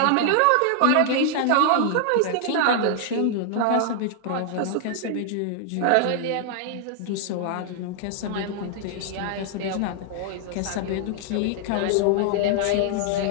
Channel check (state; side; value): different; both; correlation -0.01